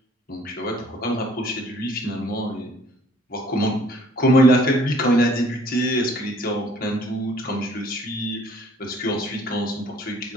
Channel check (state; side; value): normal; both; correlation 0.57